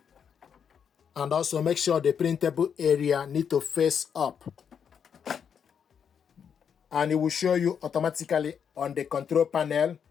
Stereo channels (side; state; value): right; quieter; 7.4 dB